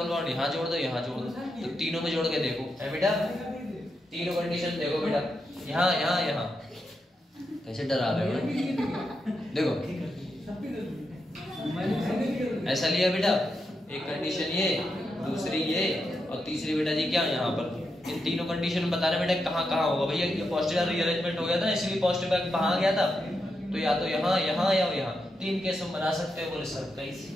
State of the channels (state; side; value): normal; both; correlation 0.85